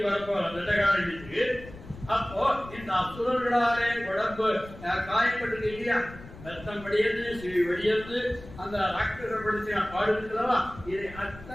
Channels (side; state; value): left; noise; rumble, 16 dB below the sound